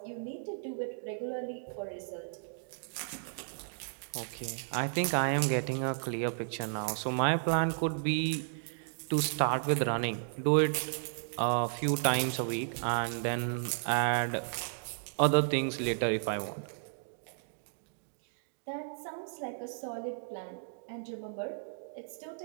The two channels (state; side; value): silent; left; digital silence